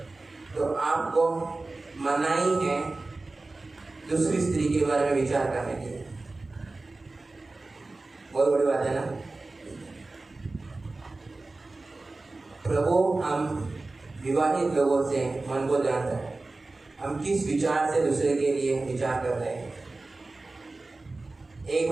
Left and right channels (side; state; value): left; quieter; 3.3 dB